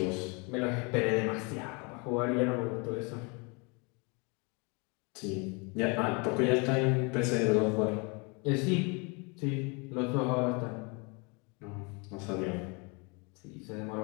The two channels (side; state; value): right; quieter; 31.2 dB